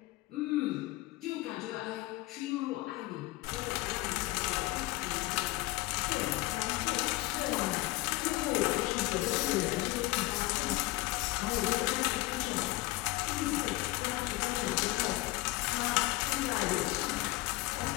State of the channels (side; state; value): right; quieter; 19.9 dB